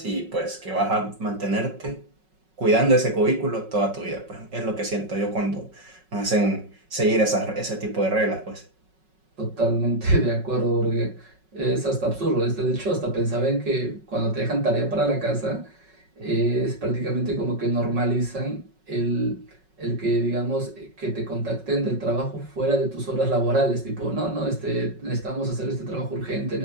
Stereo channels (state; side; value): late; left; 5.4 ms